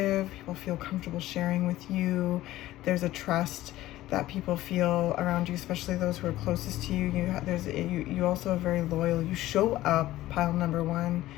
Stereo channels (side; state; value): right; quieter; 15.7 dB